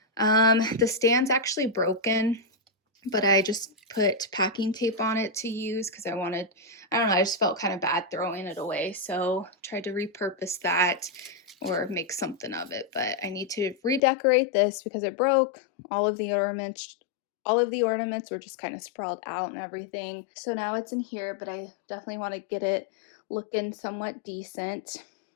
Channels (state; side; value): drops out; right; at 14.0 s